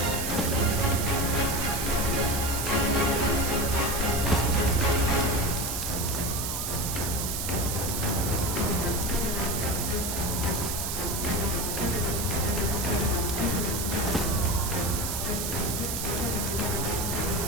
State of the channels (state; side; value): noise; right; hiss, 3 dB below the sound